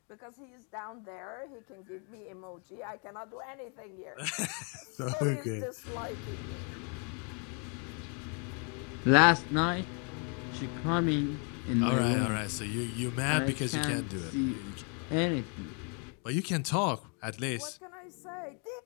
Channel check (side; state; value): right; quieter; 38.7 dB